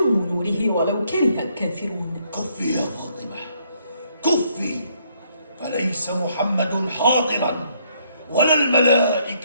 نوره ولو كره الكافرون. كفي يا فاطمة، كفي، فليس محمد حاضرا ولا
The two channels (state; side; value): inverted; both; correlation -0.70